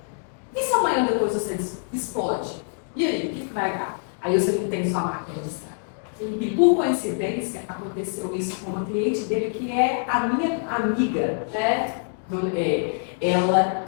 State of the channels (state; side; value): silent; right; digital silence